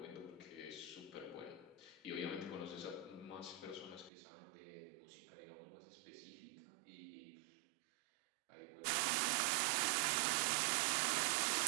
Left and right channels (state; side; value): drops out; left; at 4.1 s